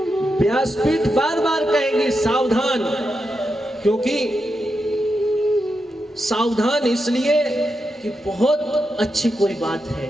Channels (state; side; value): normal; both; correlation 0.86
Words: व्यासपीठ बार बार कहेगी सावधान, क्योंकि सावधान इसलिए कि बहुत अच्छी कोई बात है।